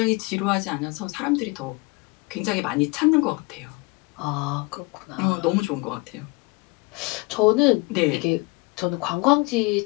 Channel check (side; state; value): right; quieter; 25.5 dB